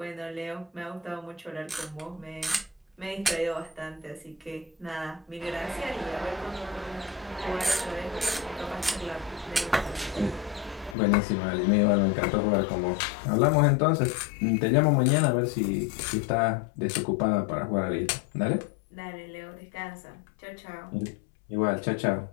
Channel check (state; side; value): drops out; right; at 11.0 s